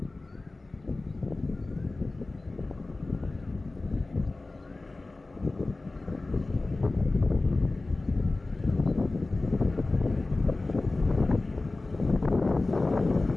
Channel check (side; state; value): right; quieter; 3.2 dB